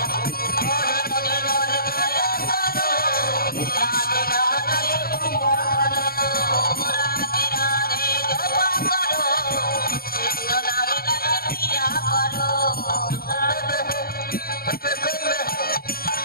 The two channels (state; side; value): late; right; 0.43 ms